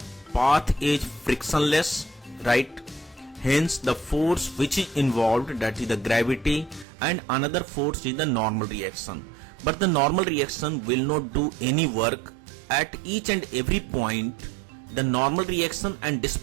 path is frictionless, right? Hence the force which is involved, that is the gravity, and another force is the normal reaction. But the normal reaction will not do any work. At each and every point the normal reaction and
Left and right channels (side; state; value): left; drops out; at 6.9 s